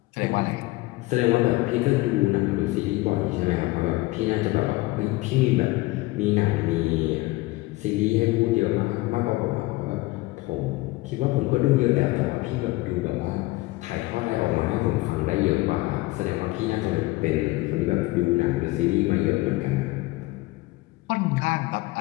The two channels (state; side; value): quieter; right; 20.5 dB